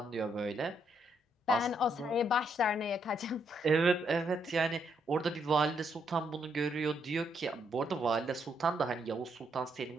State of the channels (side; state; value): both; normal; correlation 0.75